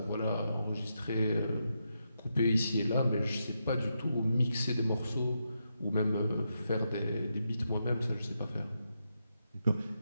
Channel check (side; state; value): both; inverted; correlation -0.84